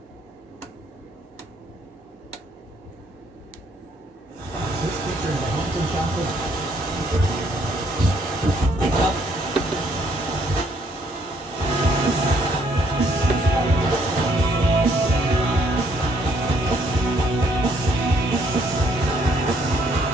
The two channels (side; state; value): both; normal; correlation 0.68